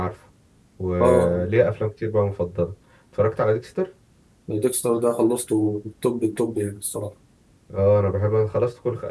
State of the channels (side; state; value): both; identical; correlation 1.00